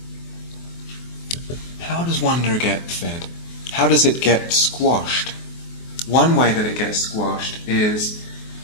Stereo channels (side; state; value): right; late; 24 ms